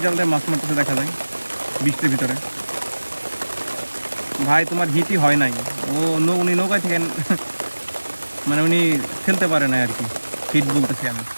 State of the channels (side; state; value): both; inverted; correlation -1.00